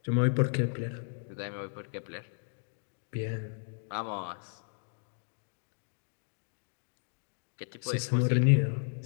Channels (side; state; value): right; silent; digital silence